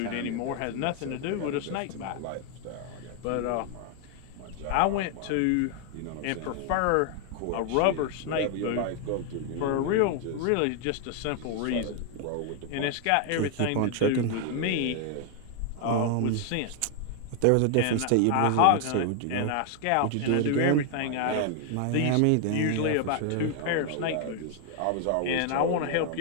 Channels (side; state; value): both; different; correlation 0.00